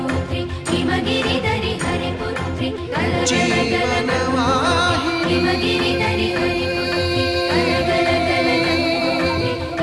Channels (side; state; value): both; identical; correlation 1.00